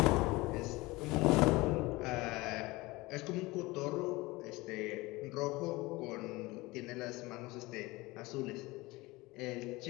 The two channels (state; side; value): quieter; right; 21.7 dB